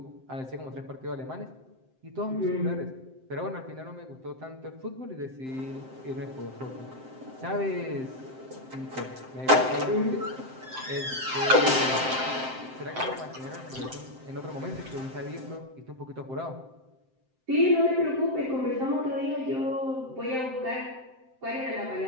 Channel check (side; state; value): left; late; 7.7 ms